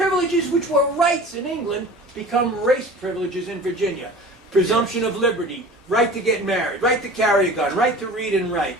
which were rights in England become race privileges in Virginia. Presumption of liberty, right to get married, right to carry a gun, right to read and write,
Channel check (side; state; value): both; normal; correlation 0.40